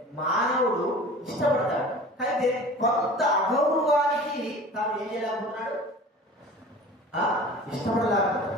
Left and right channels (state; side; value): normal; both; correlation 0.41